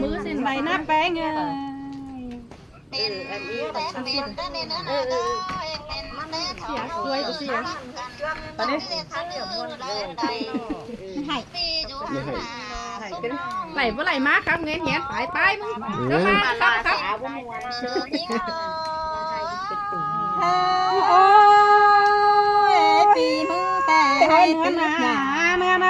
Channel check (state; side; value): identical; both; correlation 1.00